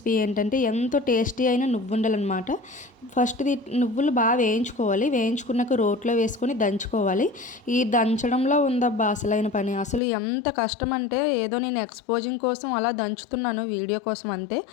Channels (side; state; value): right; drops out; at 10.0 s